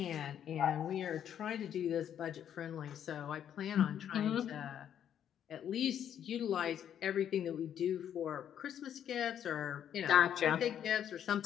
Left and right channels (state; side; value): quieter; right; 9.6 dB